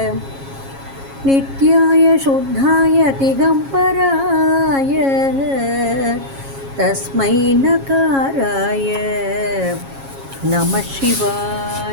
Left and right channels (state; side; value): late; left; 7.3 ms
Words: நித்யாய சுத்தாய திகம்பராய தஸ்மை நகாராய நம